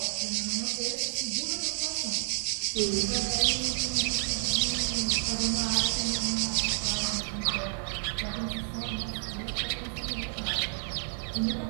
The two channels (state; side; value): silent; left; 58 dB below the other